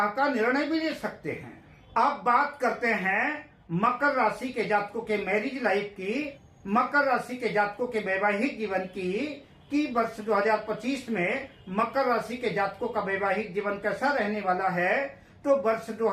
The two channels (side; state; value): both; identical; correlation 1.00